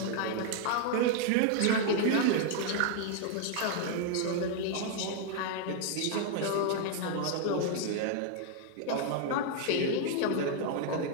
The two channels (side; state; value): both; different; correlation 0.00